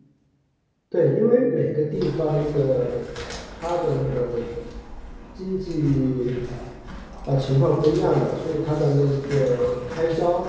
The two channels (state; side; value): identical; both; correlation 1.00